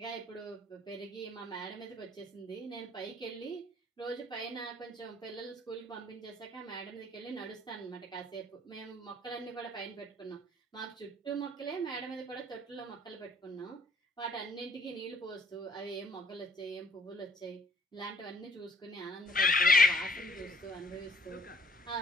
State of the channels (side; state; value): both; normal; correlation 0.61